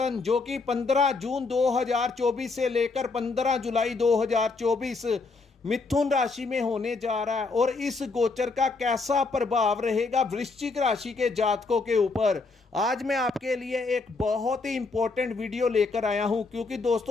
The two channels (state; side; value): quieter; right; 3.9 dB